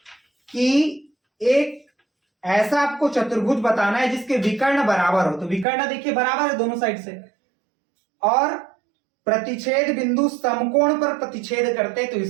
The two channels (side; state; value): left; drops out; at 5.7 s